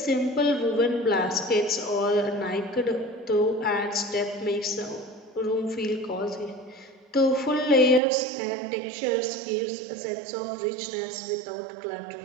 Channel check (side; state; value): left; drops out; at 8.0 s